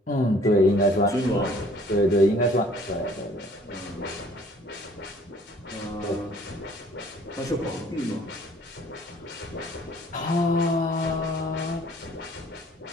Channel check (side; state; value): both; normal; correlation 0.56